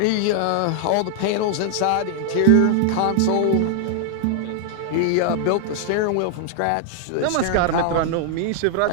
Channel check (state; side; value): different; both; correlation 0.00